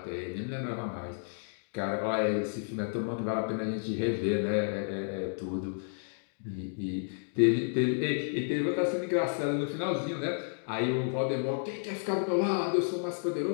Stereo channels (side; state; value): right; silent; digital silence